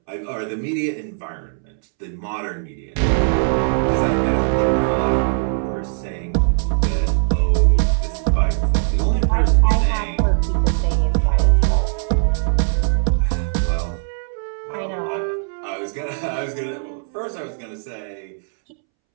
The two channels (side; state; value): left; silent; 66 dB below the other